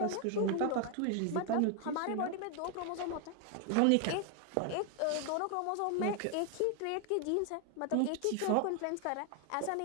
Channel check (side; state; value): both; different; correlation 0.00